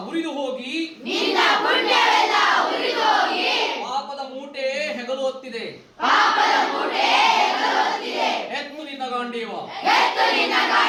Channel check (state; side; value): identical; both; correlation 1.00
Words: ಉರಿದು ಹೋಗಿ ಪಾಪದ ಮೂಟೆ ಹೆಗಲು ಹೊತ್ತಿದೆ. ಎತ್ತು ನಿನ್ನ ಗಾಂಡೀವ